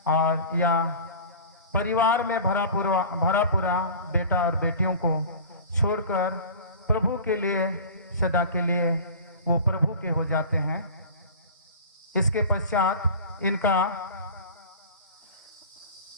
और यह परिवार में भरा पूरा बेटा और बेटियों को छोड़कर प्रभु के लिए सदा के लिए वो प्रभु के हो जाते हैं। इसके पश्चात इनका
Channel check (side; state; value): both; inverted; correlation -0.38